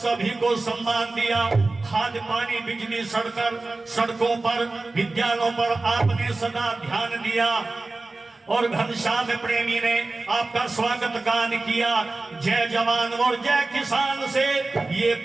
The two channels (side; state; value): left; quieter; 3.3 dB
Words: को सम्मान दिया, खाद पानी बिजली सड़कों पर विद्यालयों पर आपने सदा ध्यान दिया। और घनश्याम प्रेमी ने आपका स्वागत गान किया, जय जवान और जय किसान से ये